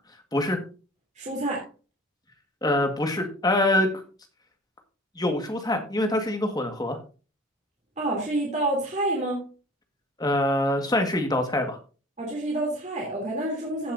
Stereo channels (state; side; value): normal; both; correlation 0.44